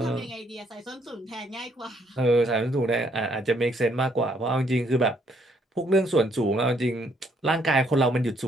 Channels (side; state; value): both; normal; correlation 0.69